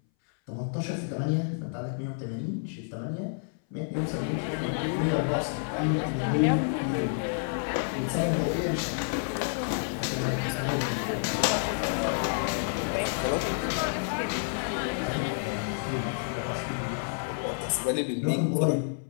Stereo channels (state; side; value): silent; right; 58 dB below the other